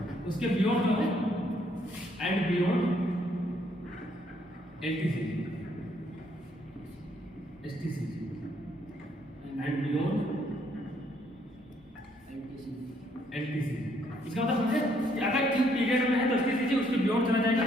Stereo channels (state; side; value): normal; both; correlation 0.69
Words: उसके बियॉन्ड जो है and beyond LTCG, STCG and beyond LTCG. इसका मतलब समझे कि अगर किस पीरियड में है तो एसटीसीजी, उसके बियॉन्ड चला जाएगा